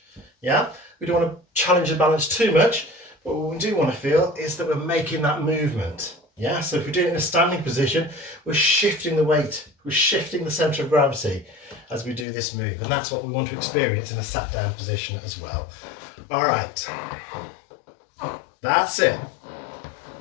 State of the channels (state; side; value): drops out; right; at 12.2 s